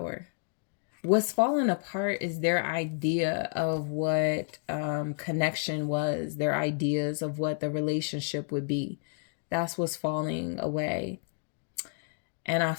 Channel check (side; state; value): right; silent; digital silence